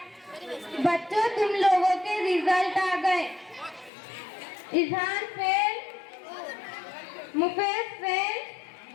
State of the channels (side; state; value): right; drops out; at 3.9 s